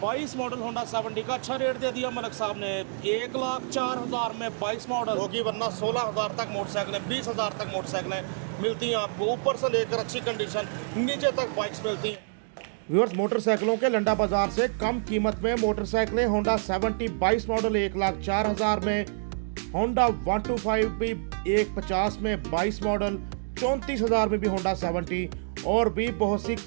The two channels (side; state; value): left; silent; digital silence